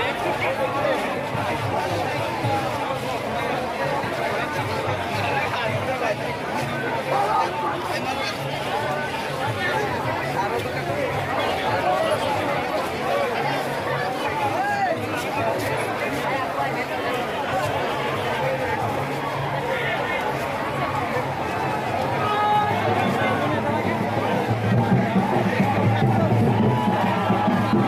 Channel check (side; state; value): both; identical; correlation 1.00